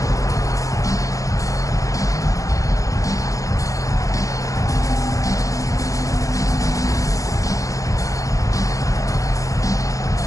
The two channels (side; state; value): right; late; 0.16 ms